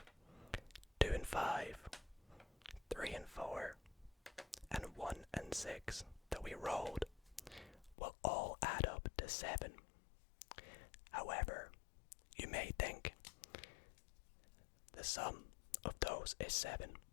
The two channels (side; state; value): right; drops out; at 8.0 s